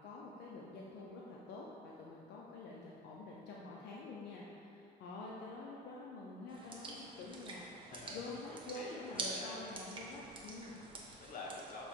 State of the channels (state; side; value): normal; both; correlation 0.22